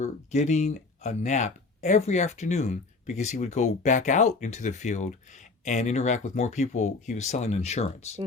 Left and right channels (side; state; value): right; quieter; 3.9 dB